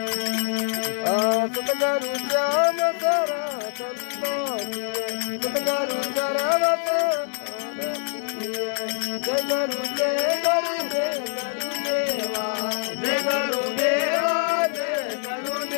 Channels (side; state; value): right; silent; 62 dB below the other